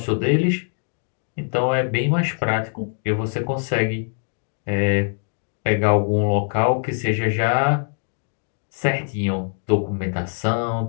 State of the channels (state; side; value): silent; right; 64 dB below the other